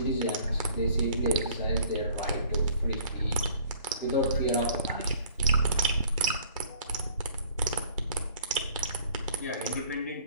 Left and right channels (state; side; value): inverted; both; correlation -0.53